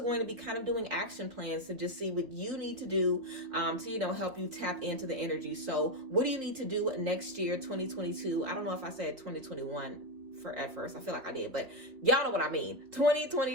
to be kind of doing action plans to just see what you need to do to, help you tap into the energy. So what do you need to do next year, 2022? I don't know if I said 2021 at first. I feel like I did, but y'all know what I mean.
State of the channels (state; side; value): late; left; 3.6 ms